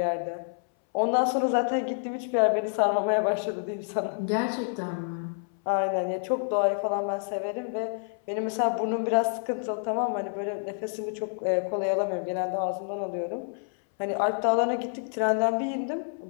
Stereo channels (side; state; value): right; silent; 59 dB below the other